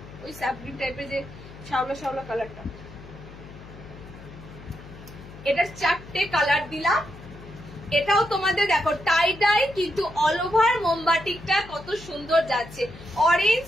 ওই স্যাপ গ্রিন টাইপের যে শ্যাওলা শ্যাওলা কালারটা। এটার 4টে কালার দিলাম। এটাও তোমাদের দেখো টাই ডাই, কিন্তু অল ওভার মোমবাটিকটা কত সুন্দর যাচ্ছে। অরেঞ্জ,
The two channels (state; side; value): noise; left; hum, 17 dB below the sound